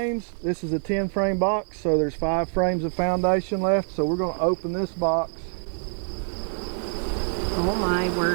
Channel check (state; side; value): silent; left; digital silence